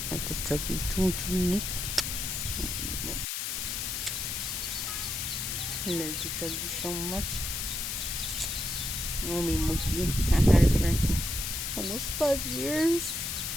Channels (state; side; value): noise; left; hiss, 2 dB below the sound